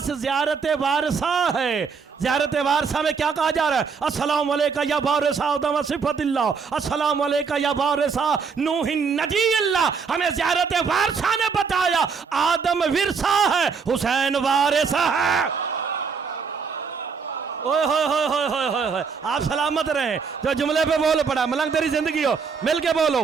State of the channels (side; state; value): left; quieter; 5.6 dB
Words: زیارت وارثہ ہے۔ زیارت وارثہ میں کیا کہا جا رہا ہے؟ السلام علیکہ یا وارث آدم صفت اللہ، السلام علیکہ یا وارث نوح نجی اللہ۔ ہمیں زیارت وارثہ نے بتایا آدم ورثہ ہے، حسین وارث ہے۔ اوہ ہوئے ہوئے ہوئے ہوئے ہوئے ہوئے، آپ سلامت رہیں۔ جو جملے پہ بول پڑا، ملنگ تیری زندگی ہو، مل کے بولو